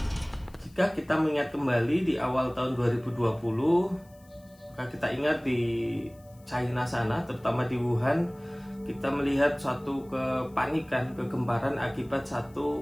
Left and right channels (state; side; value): noise; left; hiss, 30 dB below the sound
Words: Jika kita mengingat kembali di awal tahun 2020, maka kita ingat di China sana, terutama di Wuhan, kita melihat suatu kepanikan, kegemparan akibat